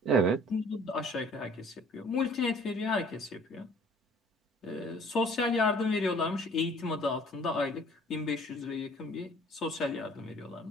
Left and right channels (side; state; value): both; normal; correlation 0.53